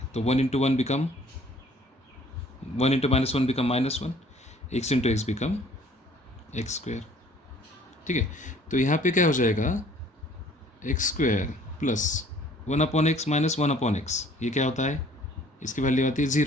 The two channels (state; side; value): normal; both; correlation 0.55